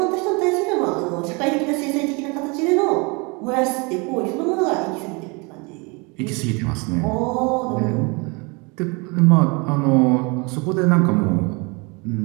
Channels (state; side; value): quieter; left; 29.5 dB